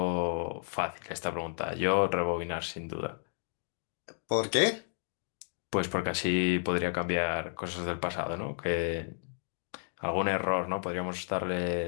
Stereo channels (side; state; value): right; silent; 56 dB below the other